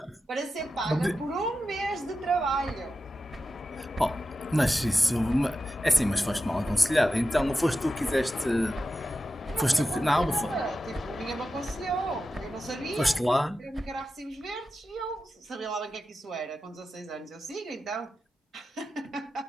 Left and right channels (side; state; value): both; normal; correlation 0.91